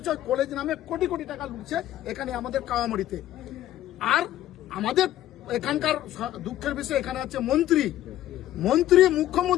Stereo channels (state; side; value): quieter; right; 13.3 dB